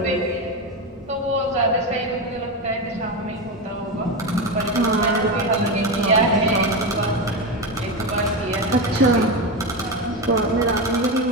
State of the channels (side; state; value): both; normal; correlation 0.15